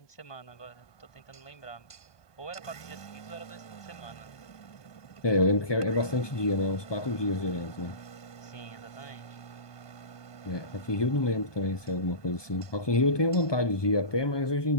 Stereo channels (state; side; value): late; right; 1.2 ms